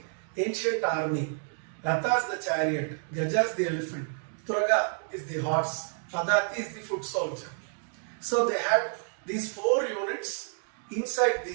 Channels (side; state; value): left; silent; 58 dB below the other